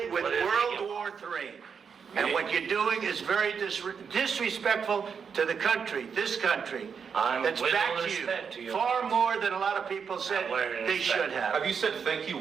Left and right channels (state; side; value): quieter; left; 6.4 dB